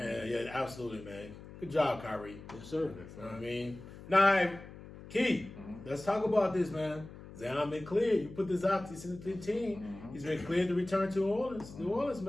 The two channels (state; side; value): noise; left; hum, 15 dB below the sound